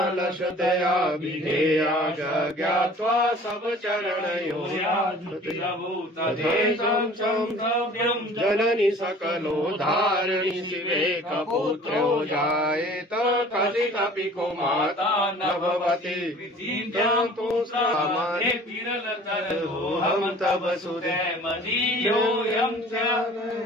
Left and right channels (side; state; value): both; normal; correlation 0.48